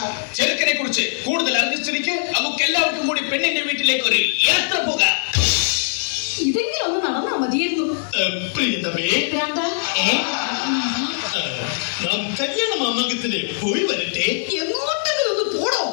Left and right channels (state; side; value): silent; right; 65 dB below the other